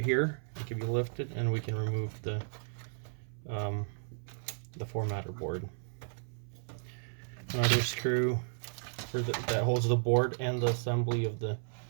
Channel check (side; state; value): left; silent; 55 dB below the other